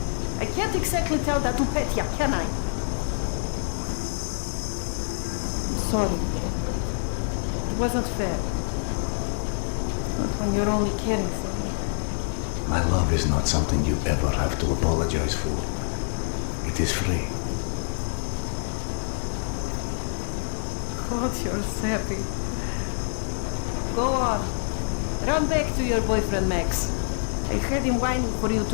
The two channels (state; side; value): silent; right; digital silence